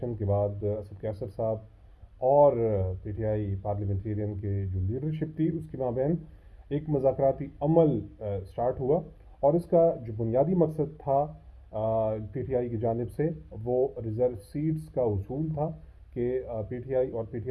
के बाद असद कैसर साहब और पीटीआई पार्लियामेंटेरियन के जो लीडरशिप थी उसके माबैन एक मुज़ाकराती अमल स्टार्ट हुआ। और इसका जो बुनियादी मकसद था पीटीआई की जानिब से, वो रिज़र्व सीट्स का उसूल था कि पीटीआई और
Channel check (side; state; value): both; identical; correlation 1.00